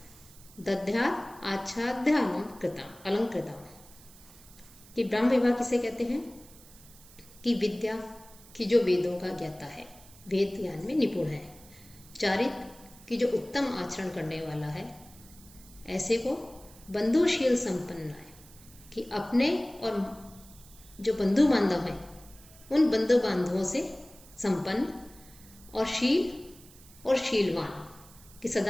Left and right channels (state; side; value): noise; right; hiss, 22 dB below the sound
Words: दध्यात आच्छाद्य अलंकृता। कि ब्राह्म विवाह किसे कहते हैं? कि विद्या की जो वेदों का ज्ञाता है, वेद ज्ञान में निपुण है, कि जो उत्तम आचरण करने वाला है, ऐसे को बंधुशील संपन्न है, कि अपने और जो बंधु बांधव हैं उन बंधु बांधवों से संपन्न और शील और शीलवान, कि